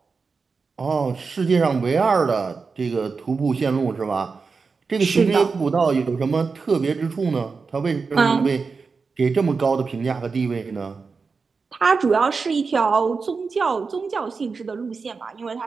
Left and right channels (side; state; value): left; quieter; 4.8 dB